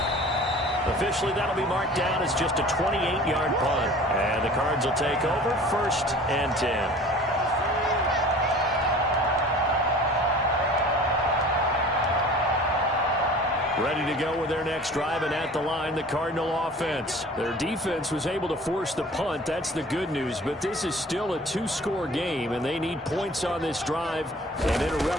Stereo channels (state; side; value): normal; both; correlation 0.45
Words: Officially, that'll be marked down as just a 28-yard punt. And the Cards will take over 1st and 10. Ready to go with their next drive, and at the line, the Cardinal offense. Their defense was able to force the punt. That's the good news, but this is still a 2-score game, and they need points on this drive and in a